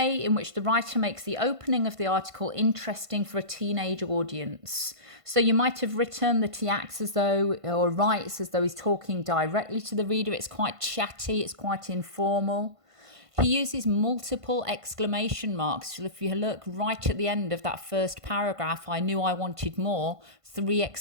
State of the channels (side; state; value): left; late; 1.5 ms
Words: in which the writer makes the opening of the article interesting for a teenage audience. So you might have written that he acts as though, or writes as though he's talking directly to the reader. It's quite chatty, it's quite informal. He uses multiple exclamation marks. So if you look right at the end of that first paragraph, I knew I wanted more, 3